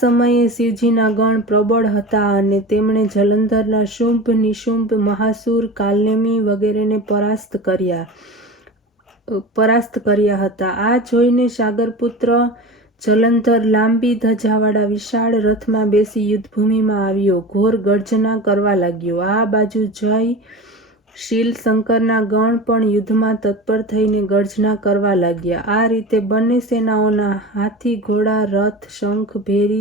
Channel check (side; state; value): both; normal; correlation 0.31